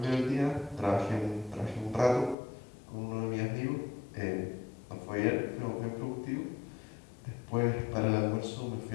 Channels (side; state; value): right; drops out; at 2.4 s